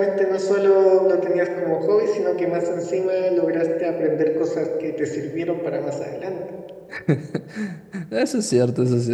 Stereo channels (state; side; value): identical; both; correlation 1.00